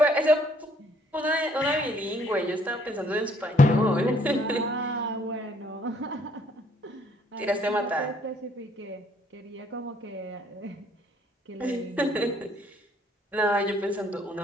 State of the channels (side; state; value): both; normal; correlation 0.64